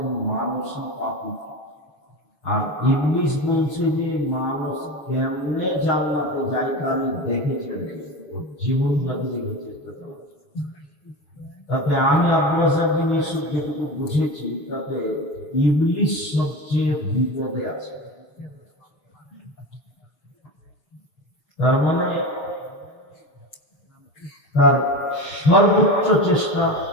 মানুষই পাপী, আর ইবলিস বলছে যে মানুষ কেমনে জান্নাতে যায় তা আমি দেখে ছেড়ে দেব, জীবন বাজি রেখে চেষ্টা করব। তাতে আমি আব্দুল রাজ্জাক বিন ইউসুফ যেটুকু বুঝেছি, তাতে ইবলিস সবচেয়ে বিপদে আছে। তার মানে তার সর্বোচ্চ চেষ্টা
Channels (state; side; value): late; right; 6.3 ms